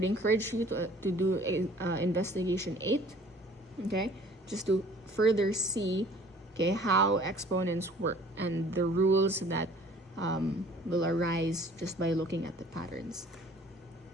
encourage you to do investigation 8, okay, just to further see, okay, how exponents work and the rules that will arise just by looking at the patterns.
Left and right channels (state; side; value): normal; both; correlation 0.52